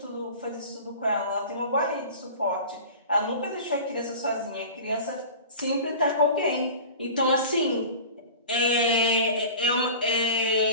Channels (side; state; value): both; inverted; correlation -0.37